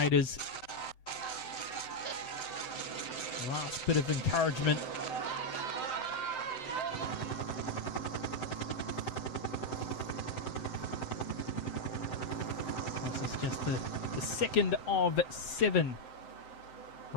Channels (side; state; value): right; late; 7.8 ms